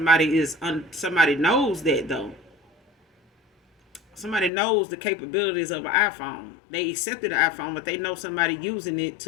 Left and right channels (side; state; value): right; drops out; at 4.5 s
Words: knows that though. Somebody knows the capabilities of an iPhone. They accepted the iPhone, but they know somebody using it